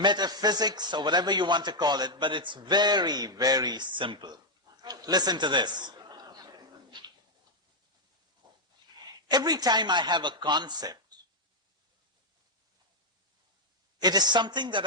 or whatever you want to call it, but it's very, very simple. Listen to this. Every time I have a concept, it is something that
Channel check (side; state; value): both; normal; correlation 0.00